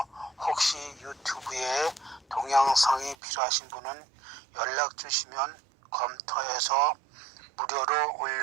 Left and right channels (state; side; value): drops out; left; at 3.2 s